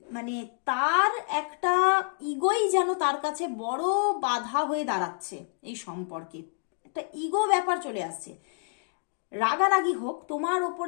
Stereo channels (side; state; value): right; silent; 59 dB below the other